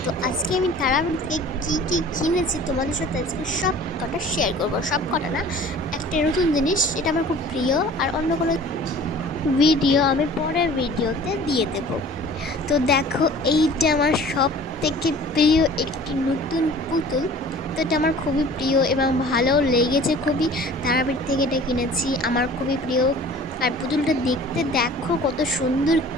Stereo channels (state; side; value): normal; both; correlation 0.46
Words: তো আজকে আমি তারাপীঠ থেকে কী কিনেছি তোমাদের সাথে আজকে সব কটা শেয়ার করবো। সব কটা না, একটা নতুন জিনিস, এটা আমার খুব প্রিয়। আর অন্য কোনো ভিডিও আমি পরের ভিডিওতে দিয়ে দেব। তো দেখো, এইটা আমার সব থেকে প্রিয় একটি নতুন পুতুল। তো এটা আমার খুবই প্রিয় এবং ভালো লেগেছে খুবই। তারাপীঠ থেকে এটা কিনেছি, আমার খুবই প্রিয়। আর পুতুলটা দেখতে দেখো কত সুন্দর,